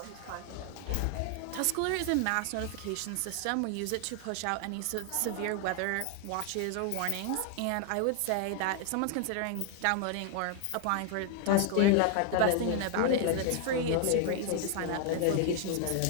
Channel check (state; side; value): different; both; correlation 0.00